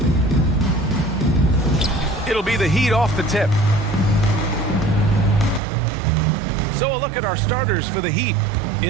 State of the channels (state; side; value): drops out; left; at 5.6 s